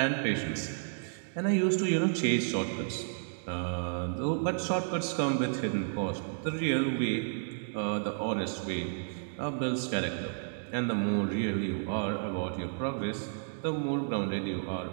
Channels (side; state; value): left; silent; digital silence